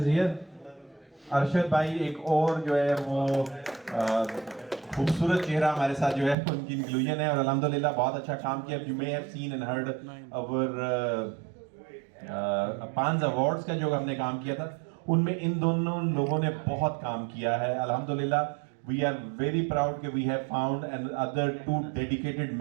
is here. Arshad भाई एक और जो है वो खूबसूरत चेहरा हमारे साथ जो है उनकी इंक्लूजन है, और अल्हम्दुलिल्लाह बहुत अच्छा काम किया। You may have seen and heard our पांच अवार्ड्स का जो हमने काम किया था, उनमें इन दोनों लोगों ने बहुत काम किया है। अल्हम्दुलिल्लाह वी आर वेरी प्राउड कि we have found and other 2 dedicated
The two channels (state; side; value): drops out; left; at 6.4 s